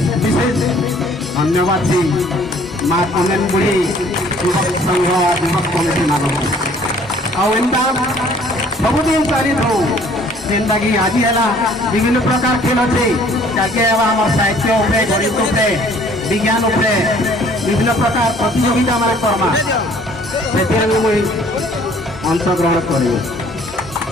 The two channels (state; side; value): normal; both; correlation 0.57